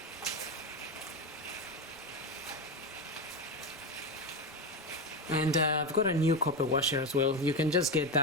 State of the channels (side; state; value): both; normal; correlation 0.15